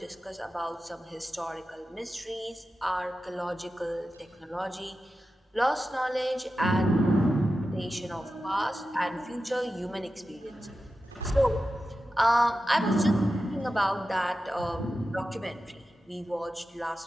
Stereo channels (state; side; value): normal; both; correlation 0.92